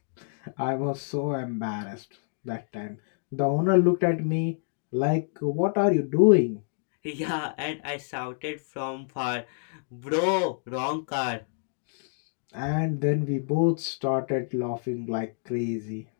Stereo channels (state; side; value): silent; right; digital silence